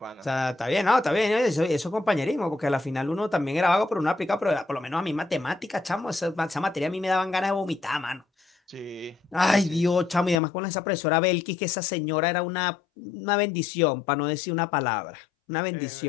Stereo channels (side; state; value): right; drops out; at 10.4 s